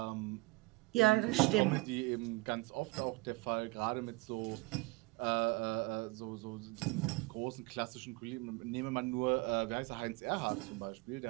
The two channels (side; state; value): left; quieter; 24.3 dB